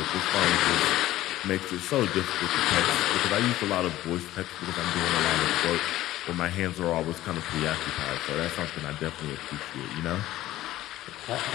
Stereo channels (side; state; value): right; quieter; 15.1 dB